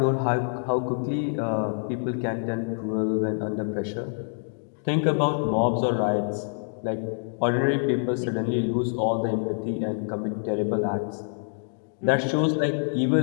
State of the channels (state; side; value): silent; right; digital silence